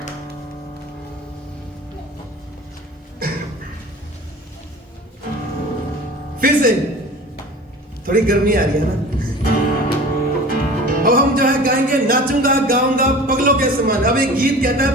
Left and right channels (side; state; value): both; normal; correlation 0.40